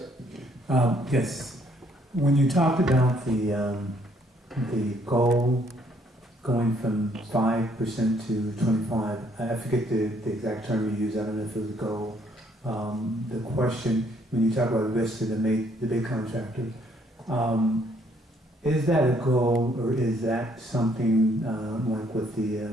Yes. When you talked about the goal going from 5% to 25. I forget the exact term you used. I don't know if it was a goal. The question, when you talk about risk to the big contractor, is that a goal, or is that something like what the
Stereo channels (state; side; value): normal; both; correlation 0.66